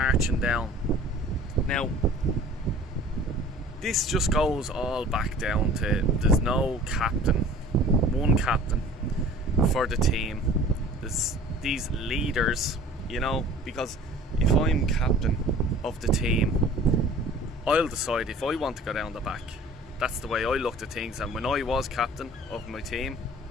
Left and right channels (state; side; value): normal; both; correlation 0.46